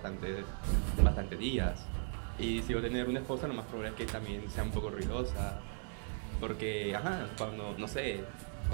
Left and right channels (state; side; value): silent; left; 53 dB below the other